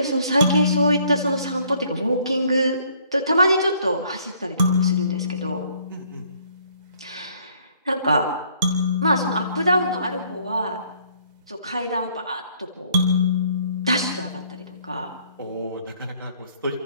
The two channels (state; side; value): inverted; both; correlation -0.63